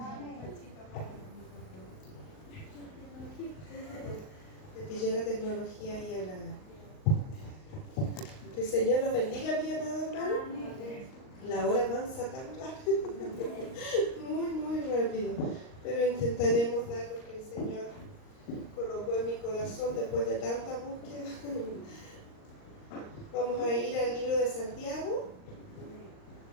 Le pilló la tecnología y a la... Que el Señor los bendiga, mi amado hermano. La hora avanza tan rápido. Muy rápido. Pero intentaremos dar lo que el Señor colocó en mi corazón después de tanta búsqueda. Vamos a ir al libro de Santiago.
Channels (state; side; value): late; right; 38 ms